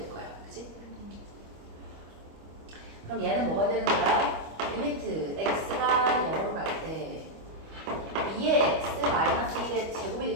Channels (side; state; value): left; late; 25 ms